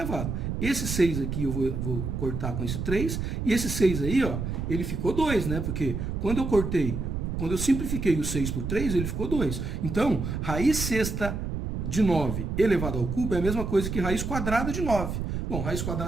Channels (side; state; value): right; noise; rumble, 3 dB below the sound